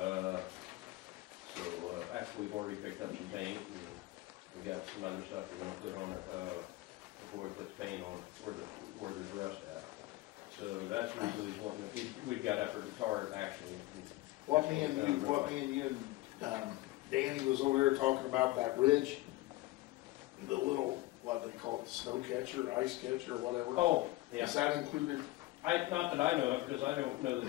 Actually we've already picked up some paint, and we got some other stuff we're gonna put on it, before we put the paint on where there's rust at. So that's really what we've got up there to tar it actually. What me and you and Danny was over there talking about that ridge, the little, what they call it, snow catcher, ice catcher, whatever. Oh, yeah. Is that included? Not that I know of, because I don't know that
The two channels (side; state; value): right; quieter; 18.7 dB